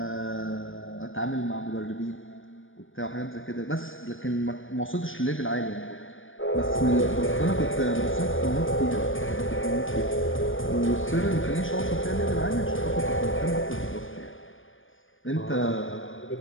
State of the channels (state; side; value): late; right; 0.58 ms